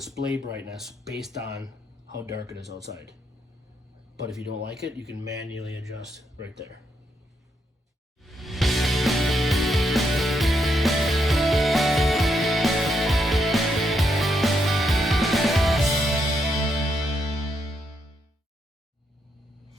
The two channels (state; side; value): normal; both; correlation 0.78